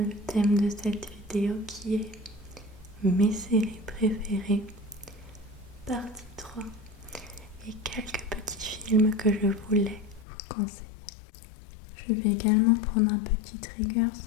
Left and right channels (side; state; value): right; drops out; at 10.2 s